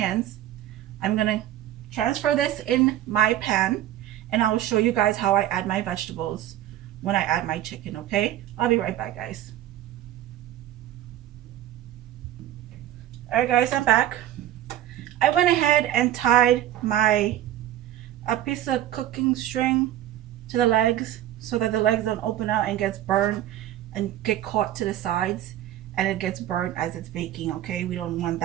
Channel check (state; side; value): quieter; left; 12.7 dB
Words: I'm gonna transfer this in my pan, and I will show you guys how I add my vegetables when I add my chicken. Okay, I'll be right back, guys. All right, guys, I'm back. I went ahead and tied a piece of cooking string to the legs so that the legs don't open out and gets burned and get caught to the sides, and it gets burnt as it's baking. Okay, we don't want